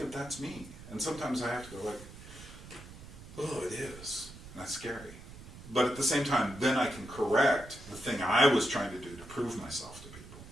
that's me. And sometimes I have to go like, oh, it is. And that's scary. But at the same time, then I can correct the thing I was trying to do to prove myself to people.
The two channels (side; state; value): right; noise; rumble, 16 dB below the sound